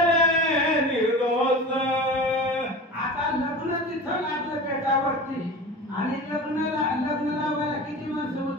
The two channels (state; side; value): normal; both; correlation 0.33